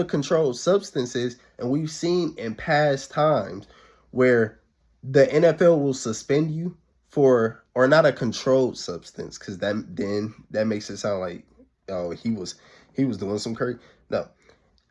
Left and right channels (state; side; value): identical; both; correlation 1.00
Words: controlled substance is, and we've seen in past times where the NFL will suspend you for, or not a controlled substance, because that makes it sound like, oh, he was doing some crazy. No,